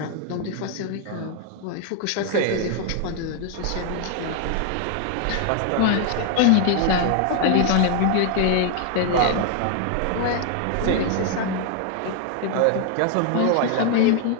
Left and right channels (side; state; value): both; different; correlation 0.00